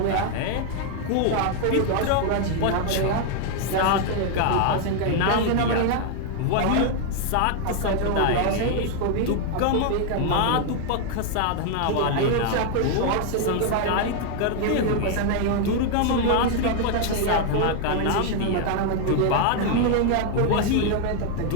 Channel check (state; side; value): different; both; correlation 0.00